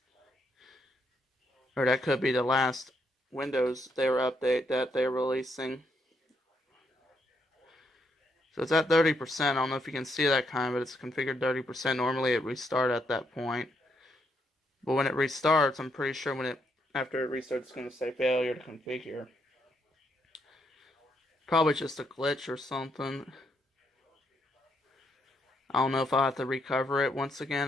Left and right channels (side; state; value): both; normal; correlation 0.76